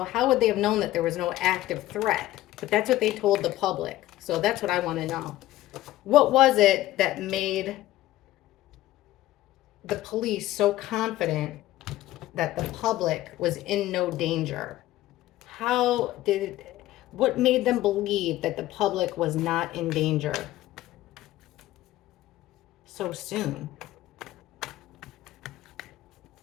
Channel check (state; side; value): quieter; right; 15.5 dB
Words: how would they have known that there was no active threat? But that's what they told the public. So that's what I want to know. What was it that made the police so confident that the public was in no danger? What made them believe that the public was not in danger so soon?